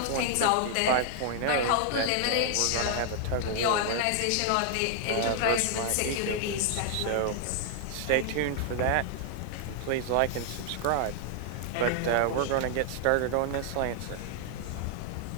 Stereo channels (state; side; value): different; both; correlation 0.00